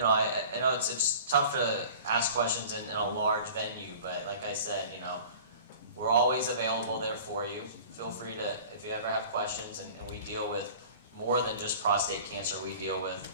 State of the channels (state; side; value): inverted; both; correlation -0.43